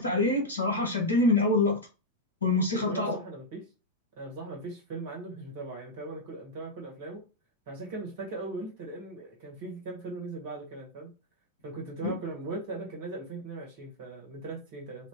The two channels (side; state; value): both; normal; correlation -0.03